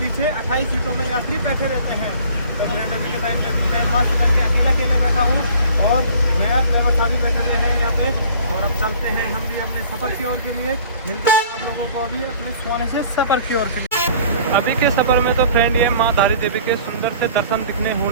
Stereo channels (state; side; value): inverted; both; correlation -0.50